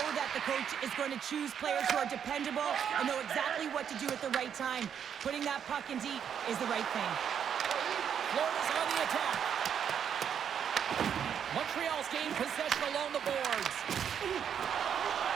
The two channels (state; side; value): quieter; left; 8.2 dB